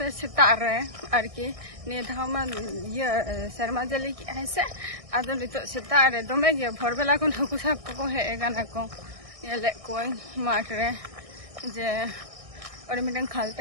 सेता रे आरकी नि धामा ये शर्मा जली की है से आदो नितो सेता रे दमे गे भोरबेला कोन हकु साब को हे गाना को येले कोई माठ रे जे और मिटन खाल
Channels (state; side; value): late; left; 1.6 ms